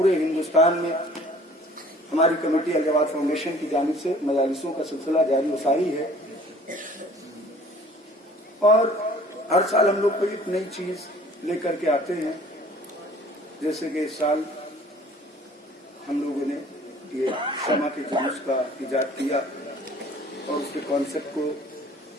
ہندوستان میں ہماری کمیٹی الجواد فاؤنڈیشن کی جانب سے مجالسوں کا سلسلہ جاری و ساری ہے. اور ہر سال ہم لوگ کوئی ایک نئی چیز لے کر کے آتے ہیں. جیسے کہ اس سال ہم لوگوں نے یہ شمع کے جلوس کا ایجاد کیا اور اس کے کانسیپٹ کو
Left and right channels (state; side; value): normal; both; correlation 0.52